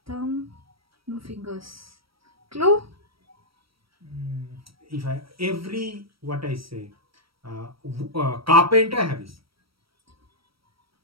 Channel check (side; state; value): left; late; 0.75 ms